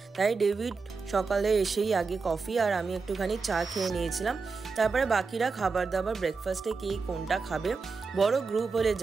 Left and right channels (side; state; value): left; quieter; 4.6 dB